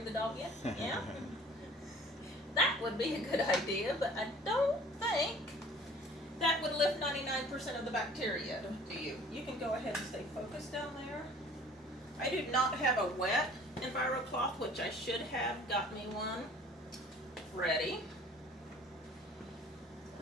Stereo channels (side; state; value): both; normal; correlation 0.50